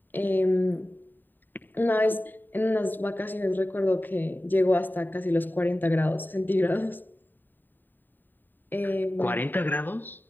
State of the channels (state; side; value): late; right; 0.091 ms